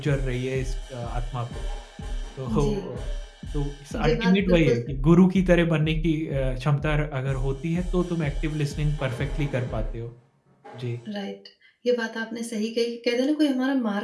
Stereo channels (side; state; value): both; identical; correlation 1.00